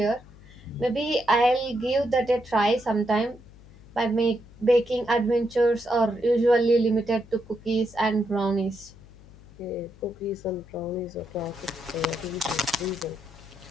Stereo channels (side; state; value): left; noise; hum, 22 dB below the sound